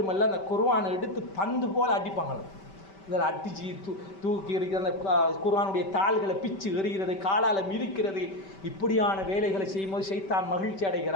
அந்த குர்ஆனை எடுத்து பந்து போல் அடிப்பாங்க. இதில் அடிச்சு தூக்கி இருக்கிற அந்த குர்ஆனுடைய தாள்களை பிச்சு எறிகிறது, காலால் மிதிக்கிறது. இப்படியான வேலைகளை செய்யும்போது ஷைத்தான் மகிழ்ச்சி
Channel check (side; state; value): right; late; 5.2 ms